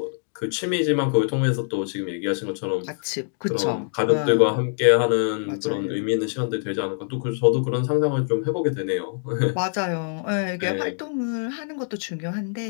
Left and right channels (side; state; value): right; silent; digital silence